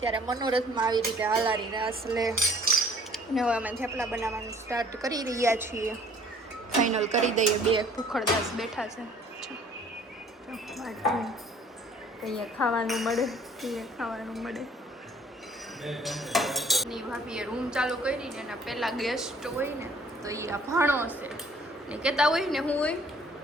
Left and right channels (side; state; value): both; normal; correlation 0.55